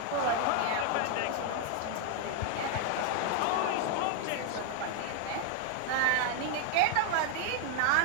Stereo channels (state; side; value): different; both; correlation 0.00